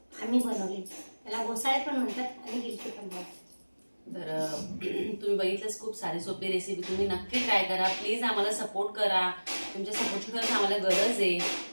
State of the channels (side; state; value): both; inverted; correlation -1.00